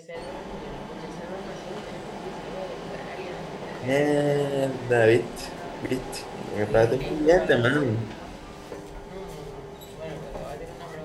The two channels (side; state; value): both; identical; correlation 1.00